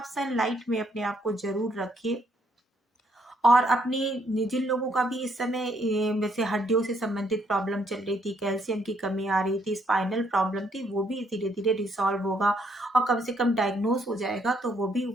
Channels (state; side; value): normal; both; correlation 0.71